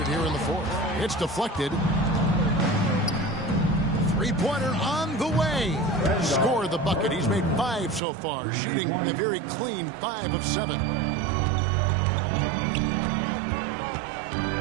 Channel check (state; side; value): drops out; left; at 8.0 s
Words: here in the fourth. It's deflected. Three-pointer on the way. Scored the bucket. He's made 5 so far, shooting a very clean 5 of 7.